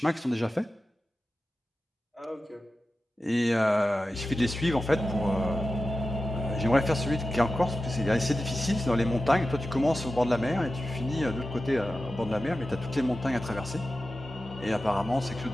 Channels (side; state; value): both; normal; correlation 0.93